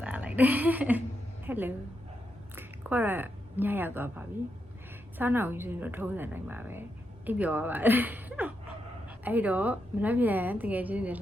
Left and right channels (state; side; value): normal; both; correlation 0.83